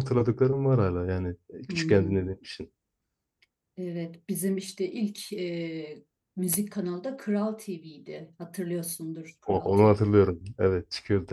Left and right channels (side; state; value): both; identical; correlation 1.00